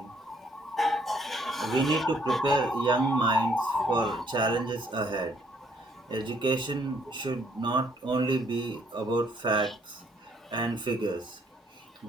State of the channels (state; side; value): normal; both; correlation 0.66